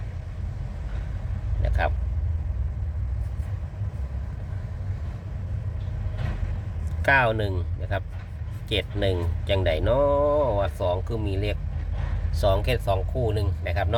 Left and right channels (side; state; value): both; identical; correlation 1.00